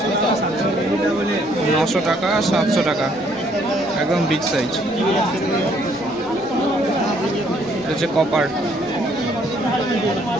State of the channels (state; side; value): noise; left; rumble, 30 dB below the sound